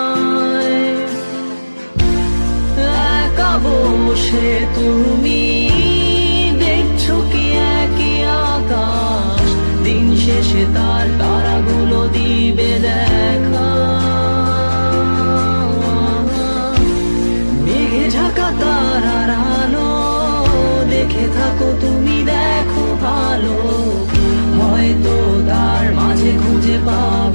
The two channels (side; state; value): both; inverted; correlation -1.00